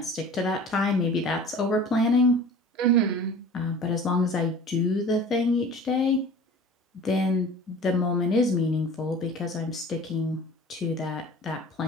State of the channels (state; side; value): normal; both; correlation 0.42